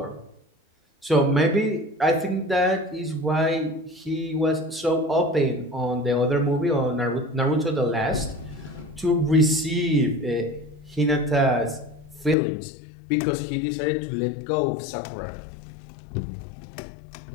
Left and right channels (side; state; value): right; drops out; at 12.4 s